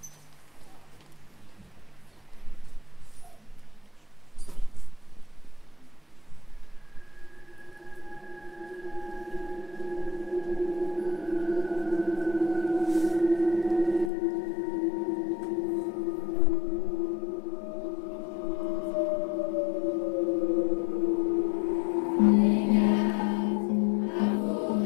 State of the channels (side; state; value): right; drops out; at 14.1 s